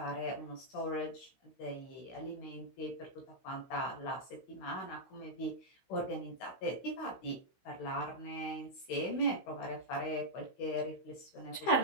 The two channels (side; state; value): right; late; 16 ms